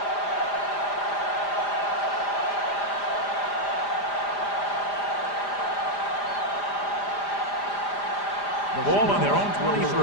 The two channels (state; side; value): late; right; 5.0 ms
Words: Ball on their own